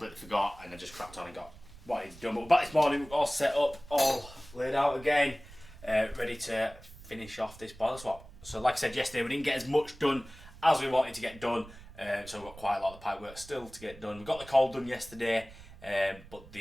forgot and I just cracked on and got what I need to do. But we're back this morning, we're all set up, all laid out again, ready to finish off this boiler swap. So like I said yesterday, we didn't get as much done as we wanted to get done, so we've got quite a lot of the pipe work still to get done. We got the cold done yesterday, but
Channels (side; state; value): right; noise; rumble, 19 dB below the sound